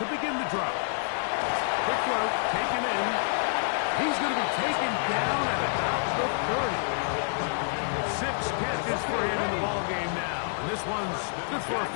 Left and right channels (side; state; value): right; silent; digital silence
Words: begin the drive. Quick throw, taken in. He's going to be taken down at about the 30. 6 catches for him in the ball game now. And this one's good for a